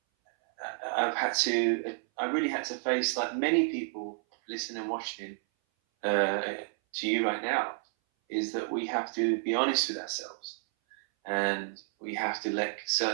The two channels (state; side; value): silent; left; 57 dB below the other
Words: really had to face, like many people listening and watching to you right now, is that we have to be honest with ourselves, and we have to let